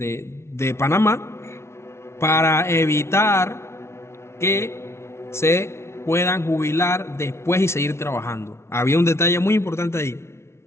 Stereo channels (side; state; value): right; late; 0.13 ms